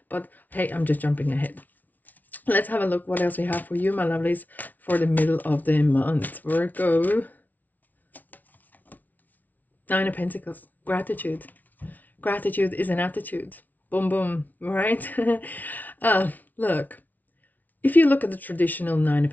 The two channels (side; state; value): right; late; 0.079 ms